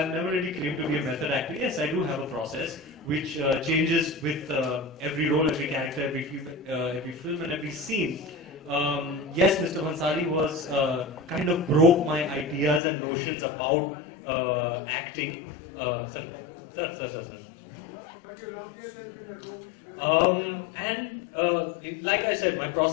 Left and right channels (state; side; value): drops out; right; at 12.8 s